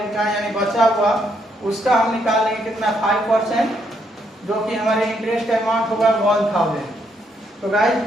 का, यानी बचा हुआ उसका हम निकाल लेंगे कितना 5%। जो कि हमारे इंटरेस्ट अमाउंट होगा 1000। तो गाइस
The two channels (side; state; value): both; normal; correlation 0.75